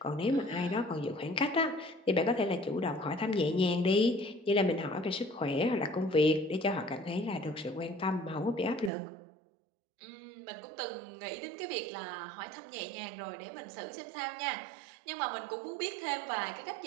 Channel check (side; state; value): left; drops out; at 8.9 s